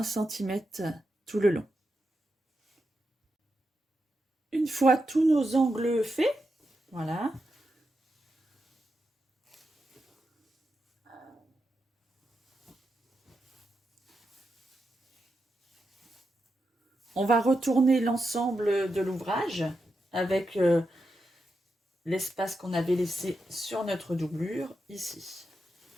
cm tout le long. Une fois tous nos angles faits, voilà. On va retourner l'ensemble de l'ouvrage avec l'espace qu'on avait laissé sur notre doublure ici.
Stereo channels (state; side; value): normal; both; correlation 0.87